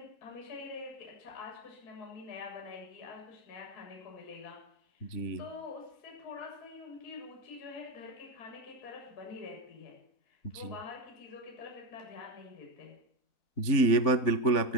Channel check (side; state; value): right; late; 3.5 ms